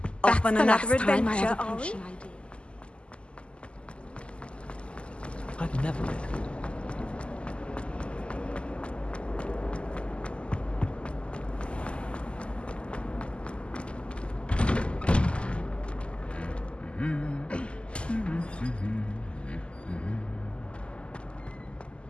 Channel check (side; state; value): right; late; 0.053 ms